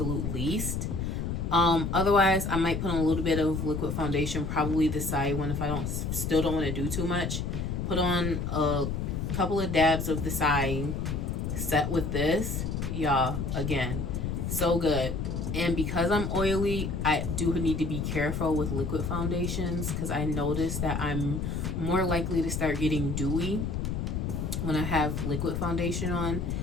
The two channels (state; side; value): noise; left; rumble, 2 dB below the sound